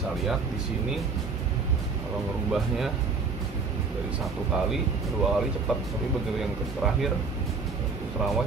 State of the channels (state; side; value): quieter; left; 4.6 dB